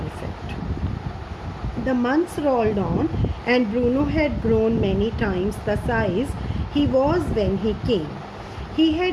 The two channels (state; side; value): identical; both; correlation 1.00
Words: The months rolled on, and Bruno had grown many times the size he was when he came. He